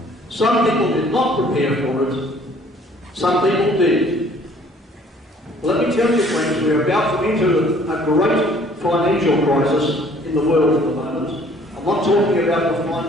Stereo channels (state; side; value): normal; both; correlation 0.57